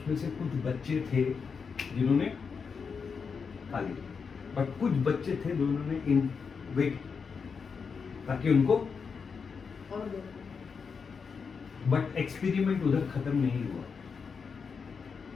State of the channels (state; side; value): quieter; right; 5.7 dB